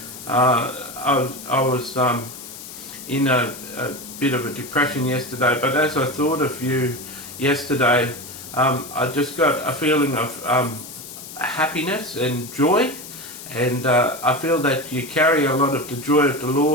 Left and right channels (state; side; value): noise; left; hiss, 13 dB below the sound